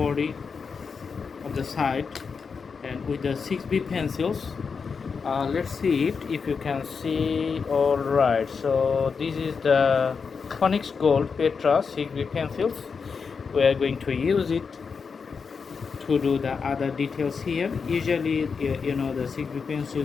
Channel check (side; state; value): right; quieter; 5.5 dB